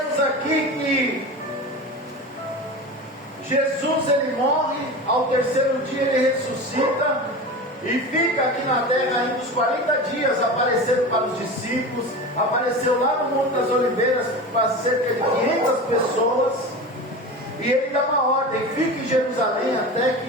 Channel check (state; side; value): normal; both; correlation 0.29